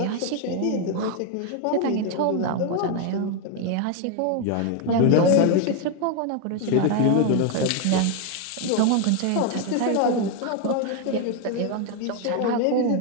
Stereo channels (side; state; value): both; different; correlation 0.01